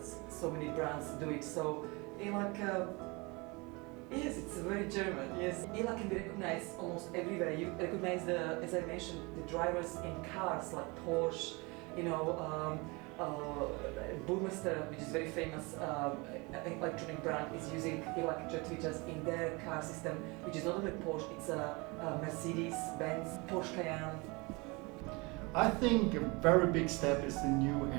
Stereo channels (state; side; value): quieter; left; 26.9 dB